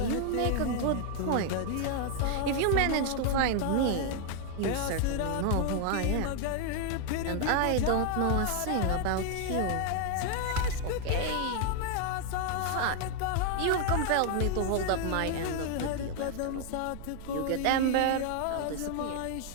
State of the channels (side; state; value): both; different; correlation 0.00